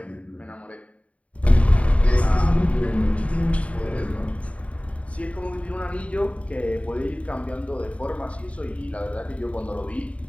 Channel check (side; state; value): right; late; 0.065 ms